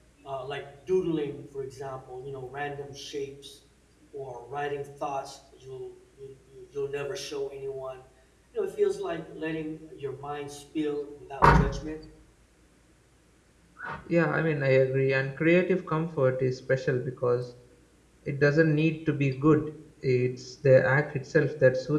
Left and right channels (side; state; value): both; identical; correlation 1.00